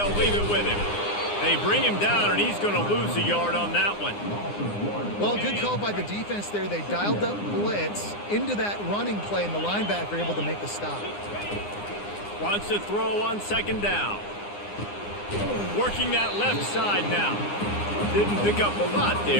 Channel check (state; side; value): late; right; 9.8 ms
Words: leave it with him. They bring him down, and he's going to lose a yard on that one. Well, good call by the defense there. They dialed up blitz into that running play, and the linebacker able to make the stop. Wants to throw on second down. Working that left side now. Didn't pick up a lot